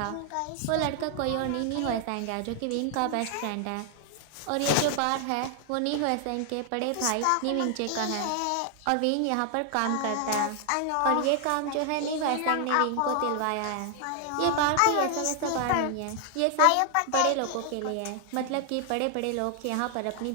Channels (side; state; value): both; different; correlation 0.00